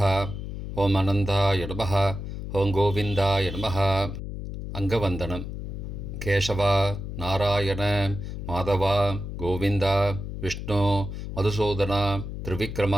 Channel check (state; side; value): noise; left; hum, 7 dB below the sound